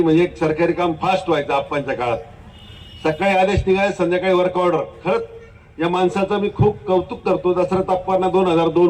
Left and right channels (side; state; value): both; identical; correlation 1.00